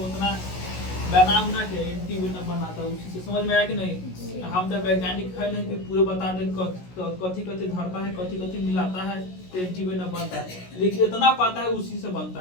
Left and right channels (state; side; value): late; right; 16 ms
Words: उतना बना उना के एंटीवेनम बनाता है उसी से। समझ में आया कि नहीं? हम तो वैज्ञानिक है नहीं कि पूरे बता दें कथी कथी धरता है, कथी कथी मिलाता है तो एंटीवेनम बनता है, लेकिन इतना पता है उसी से